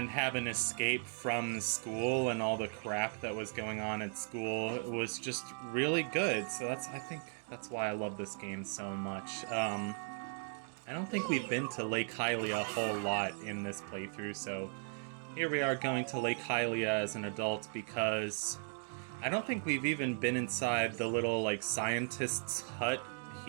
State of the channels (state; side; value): silent; left; 53 dB below the other